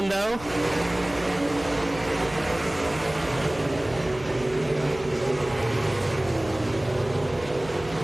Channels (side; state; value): right; noise; hum, 17 dB below the sound